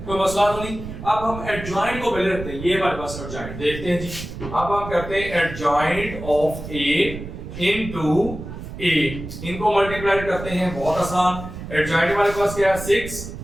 कोई मसला तो नहीं। अब हम एडजॉइंट को पहले रखते हैं, ये हमारे पास एडजॉइंट देखते हैं जी। अब हम करते हैं adjoint of a into a, इनको मल्टीप्लाई करते हैं, बहुत आसान। एडजॉइंट हमारे पास क्या है 6,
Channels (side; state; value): right; noise; rumble, 10 dB below the sound